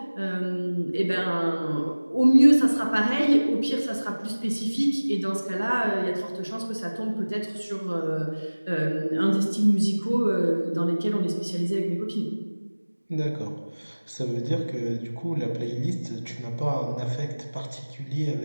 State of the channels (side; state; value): both; inverted; correlation -1.00